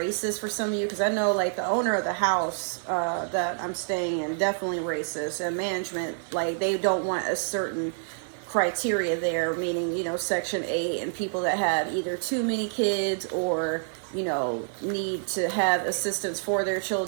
for some of you. Because I know like the owner of the house that I'm staying in, definitely racist. And management, like they don't want a certain criteria there, meaning, you know, Section 8 and people that have either too many kids or, you know, need to have assistance for their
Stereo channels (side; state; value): left; silent; digital silence